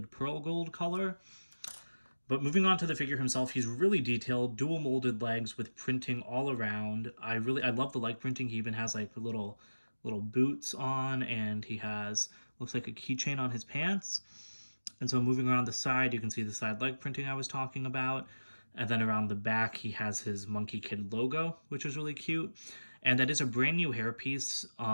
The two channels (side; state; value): both; inverted; correlation -1.00